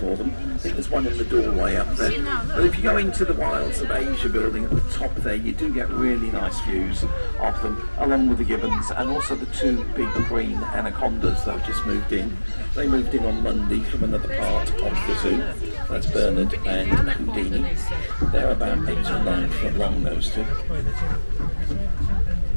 them. I think there's one in the doorway up there. But if you go into the Wilds of Asia building at the top there, you do get really nice views of them, along with the gibbons and also the 2 big green anacondas that have just moved in. They moved in on Monday from another part of the zoo. That's Bernard and Houdini. They're about 8 or 9 foot long, those 2.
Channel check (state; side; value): inverted; both; correlation -1.00